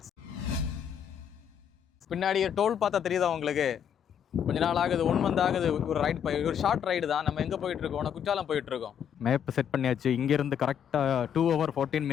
பின்னாடி toll பார்த்தா தெரியுதா உங்களுக்கு? கொஞ்ச நாள் ஆகுது, 1 month ஆகுது. ஒரு ஷார்ட் ரைடு தான். நம்ம எங்கே போயிட்டு இருக்கோம்? குற்றாலம் போயிட்டு இருக்கோம். மேப் செட் பண்ணியாச்சு. இங்கேருந்து கரெக்டாக 2 hours 14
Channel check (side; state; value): right; quieter; 8.5 dB